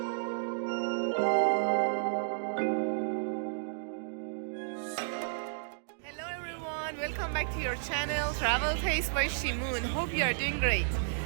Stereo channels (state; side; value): silent; left; digital silence